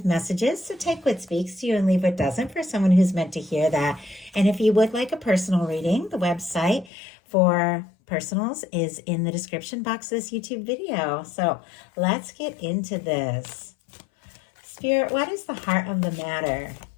messages, so take what speaks to you and leave what doesn't for someone who's meant to hear that. And if you would like a personal reading, the website for personals is in the description box of this YouTube video. So let's get into this. Spirit, what is the heart of the matter?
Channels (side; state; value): right; drops out; at 6.9 s